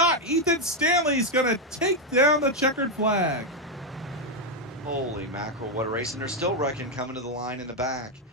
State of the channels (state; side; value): normal; both; correlation 0.03